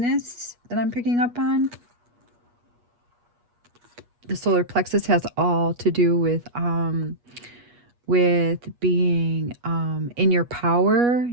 that I'm picking up on. The solar plexus has all to do with being in your power,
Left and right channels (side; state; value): left; late; 8.3 ms